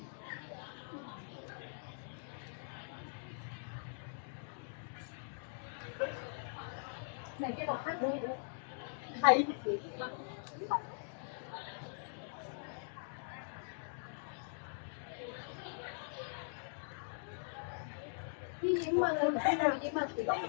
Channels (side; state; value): right; silent; digital silence